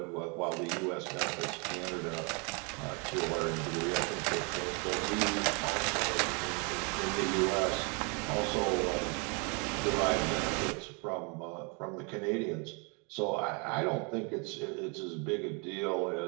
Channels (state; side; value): quieter; left; 33.6 dB